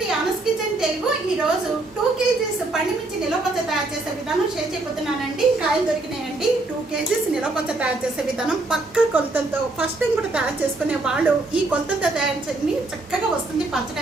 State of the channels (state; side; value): quieter; left; 3.0 dB